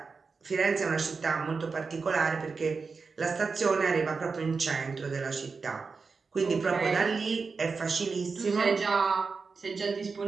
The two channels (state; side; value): quieter; left; 4.7 dB